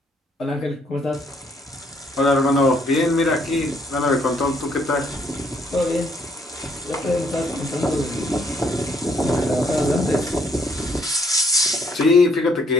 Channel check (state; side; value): normal; both; correlation 0.68